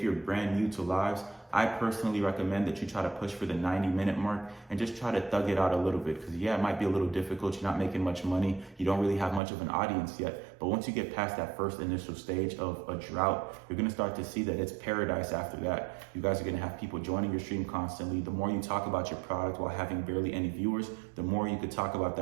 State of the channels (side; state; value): left; drops out; at 9.4 s